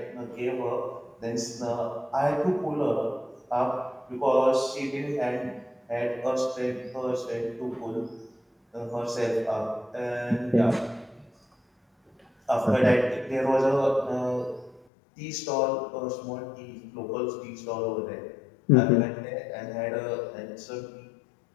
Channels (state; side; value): drops out; right; at 14.8 s